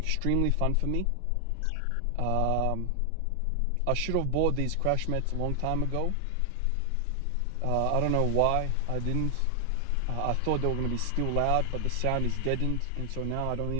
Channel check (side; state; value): both; different; correlation 0.00